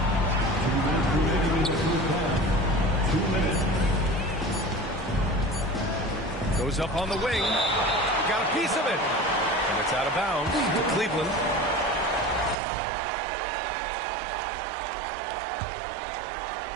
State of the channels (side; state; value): left; drops out; at 12.6 s